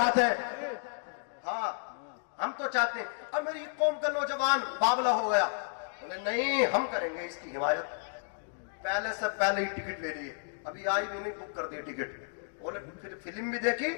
ہیں. ہاں, ہم تو چاہتے ہیں. اب میری قوم کا نوجوان باولا ہو گیا, بولے نہیں ہم کریں گے اس کی حمایت. پہلے سے پہلے ہی ٹکٹ لے لیے, ابھی آئی بھی نہیں, بک کر دی ٹکٹ. بولے پھر فلم بھی دیکھی,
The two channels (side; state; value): right; silent; digital silence